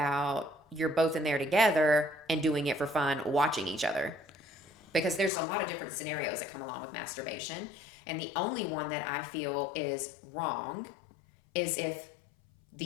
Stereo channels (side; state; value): right; drops out; at 5.3 s